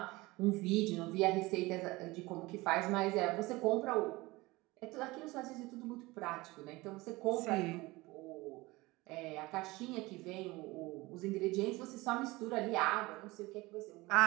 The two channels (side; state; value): left; quieter; 21.4 dB